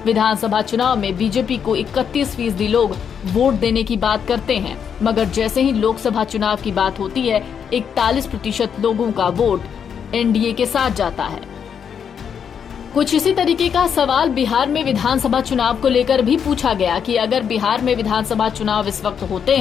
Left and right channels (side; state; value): right; quieter; 7.5 dB